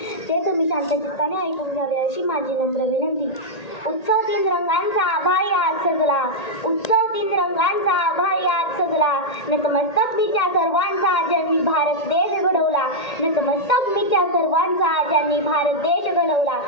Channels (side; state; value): right; late; 1.8 ms